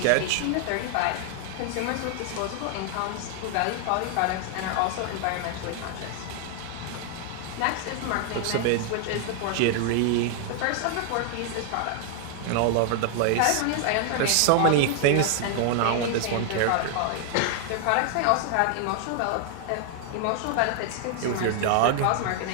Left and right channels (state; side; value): different; both; correlation 0.00